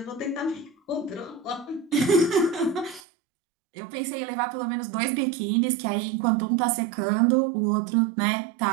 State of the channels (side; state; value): left; drops out; at 3.0 s